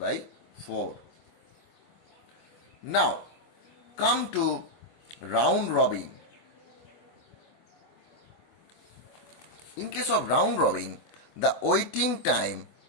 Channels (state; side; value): late; right; 24 ms